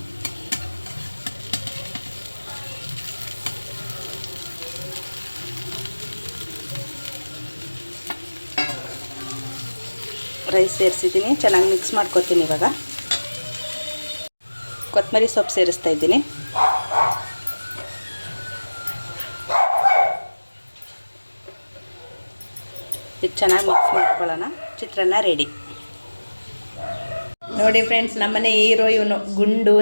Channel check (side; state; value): both; inverted; correlation -1.00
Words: ರೈಸ್ ಸೇರಿಸಿದ್ದೀನಿ, ಚೆನ್ನಾಗಿ ಮಿಕ್ಸ್ ಮಾಡ್ಕೊತೀನಿ. ಇವಾಗ ಕೊತ್ತಂಬರಿ ಸೊಪ್ಪು ಸೇರಿಸ್ತಾ ಇದ್ದೀನಿ. ಇದು ಚೆನ್ನಾಗಿ ಮಿಕ್ಸ್ ಮಾಡ್ಕೊಳ್ಳೋಣ. ಚಿತ್ರಾನ್ನ ರೆಡಿ. ನೋಡಿ ಫ್ರೆಂಡ್ಸ್, ನಮ್ಮನೆ ಹೀರೋ ಇವನು, ಗುಂಡು